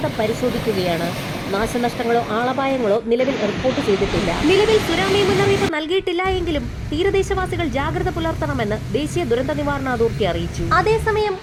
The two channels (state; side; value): identical; both; correlation 1.00